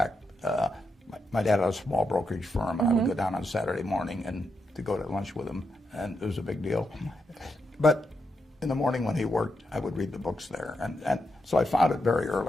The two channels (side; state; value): both; normal; correlation 0.83